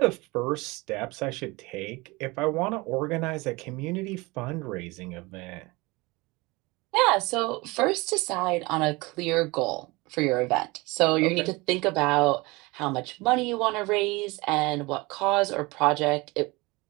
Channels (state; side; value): quieter; left; 23.8 dB